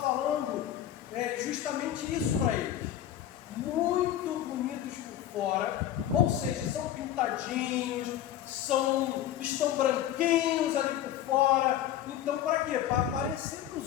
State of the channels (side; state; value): right; quieter; 11.6 dB